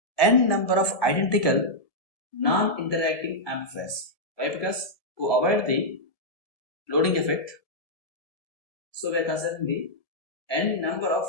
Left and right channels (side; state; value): right; late; 1.7 ms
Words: n number of identical non-interacting amplifiers. Why? Because to avoid the loading effect, so we are considering the n number of